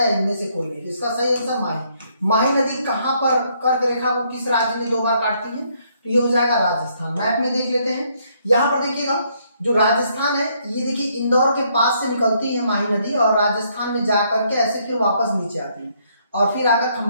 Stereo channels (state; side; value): inverted; both; correlation -0.70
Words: इनमें से कोई नहीं। इसका सही आंसर माही। माही नदी कहाँ पर कर्क रेखा को किस राज्य में 2 बार काटती है? तो ये हो जाएगा राजस्थान। मैप में देख लेते हैं। यहाँ पर देखिएगा, जो राजस्थान है, ये देखिए इंदौर के पास से निकलती है माही नदी और राजस्थान में जाकर के ऐसे फिर वापस नीचे आती है और फिर आकर